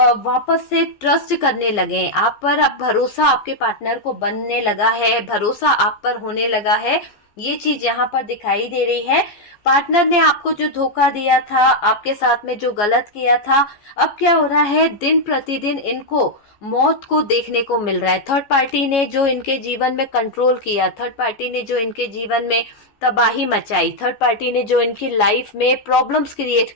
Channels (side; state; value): right; late; 14 ms